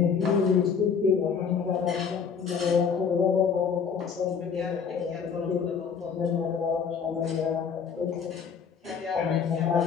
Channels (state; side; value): quieter; right; 6.4 dB